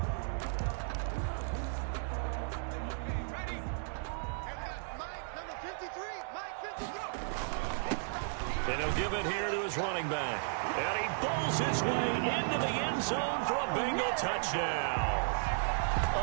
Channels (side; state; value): left; silent; digital silence